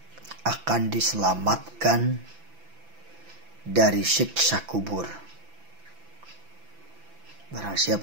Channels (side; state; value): left; late; 6.0 ms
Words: akan diselamatkan dari siksa kubur. Barang siapa